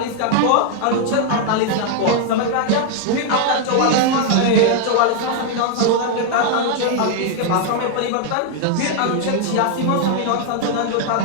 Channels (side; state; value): both; different; correlation 0.00